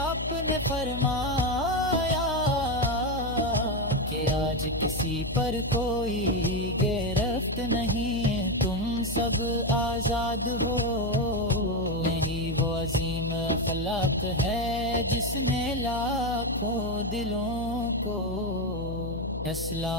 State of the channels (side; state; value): left; noise; hum, 7 dB below the sound